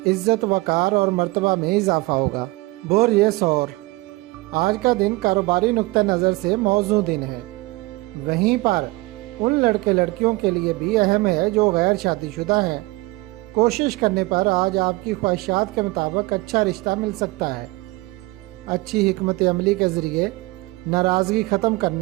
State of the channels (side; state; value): left; quieter; 22.1 dB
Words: इज्जत वकार और मर्तबा में इजाफा होगा। बोर ये सौर, आज का दिन कारोबारी नुक्ता नज़र से मौजू दिन है। वहीं पर उन लड़के लड़कियों के लिए भी अहम है जो गैर शादीशुदा हैं। कोशिश करने पर आज आपकी ख्वाहिशात के मुताबिक अच्छा रिश्ता मिल सकता है। अच्छी हिकमत अमली के ज़रिए नाराज़गी ख़त्म